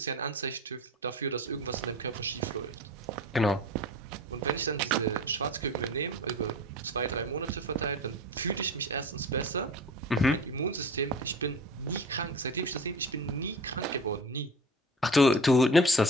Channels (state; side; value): normal; both; correlation 0.37